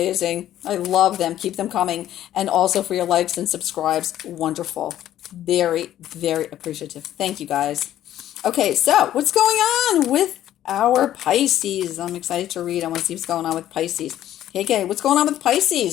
I love them. Keep them coming, and also for your likes and subscribes. Wonderful. Very, very appreciative. Thank you, guys. Okay, so what's going on with our Pisces? I'm excited to read. I want to see what's going on with Pisces. Okay, what's going on with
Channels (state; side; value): quieter; right; 12.3 dB